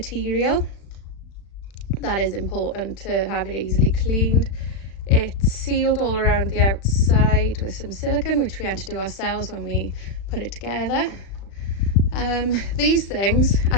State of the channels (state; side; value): late; right; 36 ms